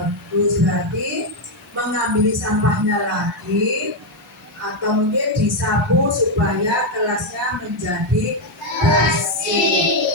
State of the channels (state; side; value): normal; both; correlation 0.03